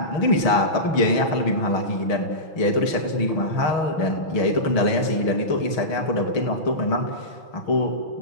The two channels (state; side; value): late; right; 6.3 ms